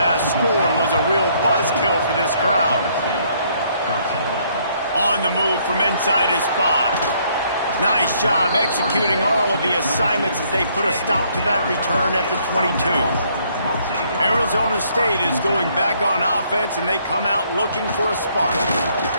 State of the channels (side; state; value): both; inverted; correlation -0.67